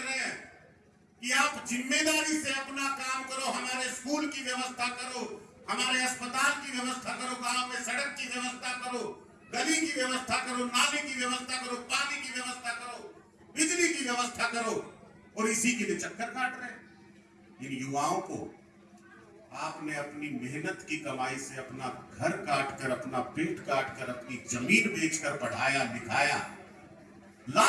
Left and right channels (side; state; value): both; identical; correlation 1.00